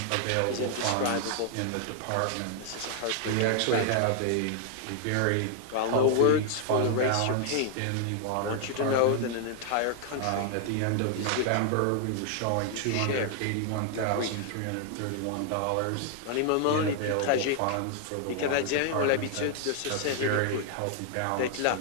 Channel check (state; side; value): different; both; correlation 0.00